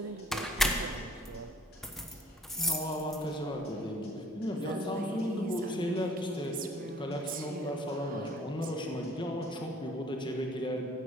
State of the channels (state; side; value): normal; both; correlation 0.56